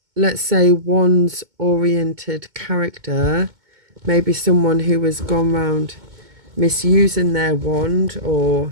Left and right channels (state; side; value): late; left; 2.2 ms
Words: let's say, wands-oriented character. Maybe someone who has gone round misusing their wand